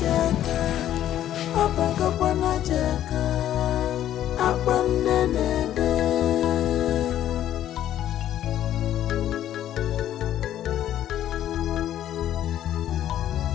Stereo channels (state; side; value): quieter; right; 11.8 dB